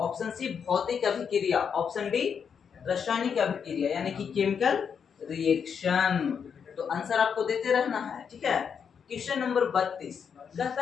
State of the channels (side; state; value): right; quieter; 6.9 dB